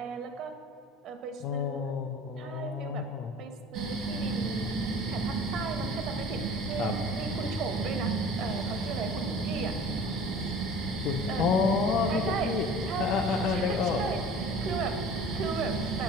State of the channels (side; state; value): both; normal; correlation 0.43